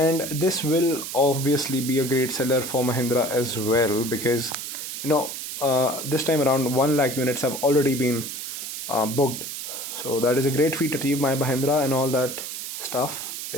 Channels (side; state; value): right; noise; hiss, 7 dB below the sound